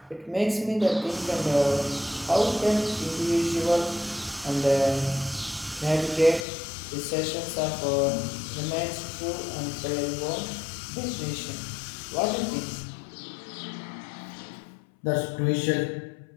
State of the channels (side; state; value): right; drops out; at 6.5 s